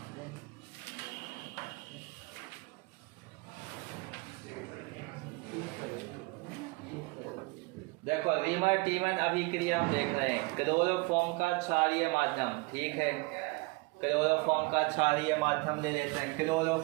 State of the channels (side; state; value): left; quieter; 26.2 dB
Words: देखो रीमर टीमन अभिक्रिया हम देख रहे हैं, क्लोरोफॉर्म का क्षारीय माध्यम, ठीक है, क्लोरोफॉर्म का क्षारीय माध्यम ले लेते हैं।